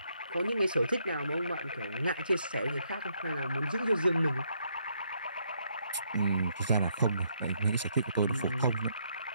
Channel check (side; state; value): both; inverted; correlation -0.73